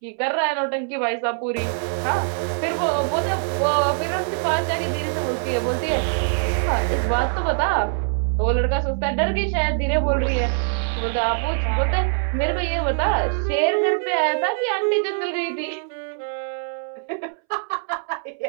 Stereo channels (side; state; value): left; silent; 63 dB below the other